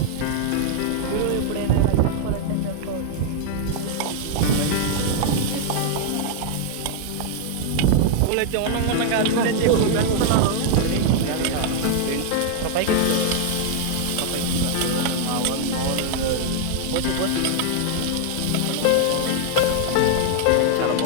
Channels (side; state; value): both; different; correlation 0.00